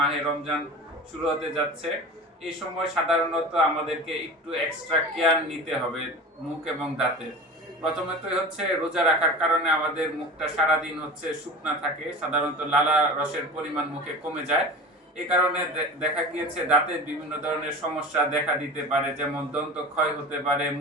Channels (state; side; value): normal; both; correlation 0.33